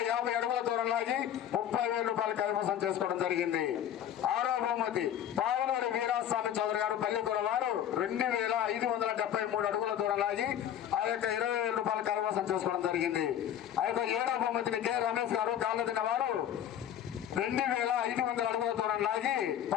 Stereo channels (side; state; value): right; quieter; 10.4 dB